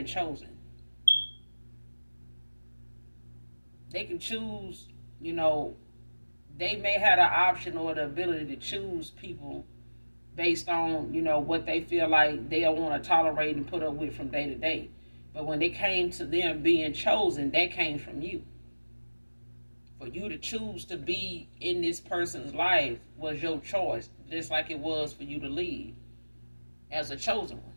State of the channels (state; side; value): inverted; both; correlation -1.00